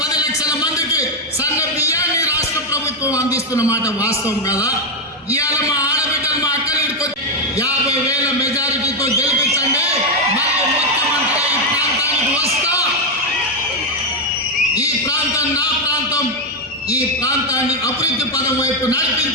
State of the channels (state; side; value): normal; both; correlation 0.04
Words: మందికి సన్న బియ్యాన్ని రాష్ట్ర ప్రభుత్వం అందిస్తున్న మాట వాస్తవం కదా. ఇవాళ మా ఆడబిడ్డలు మా అక్కలు 50,000 మెజారిటీతో గెలిపించండి, మళ్ళీ ముఖ్యమంత్రిగా ఈ ప్రాంతానికి వస్తా, ఈ ప్రాంతం నా ప్రాంతం, ఈ ప్రాంతాన్ని అభివృద్ధి పదం వైపు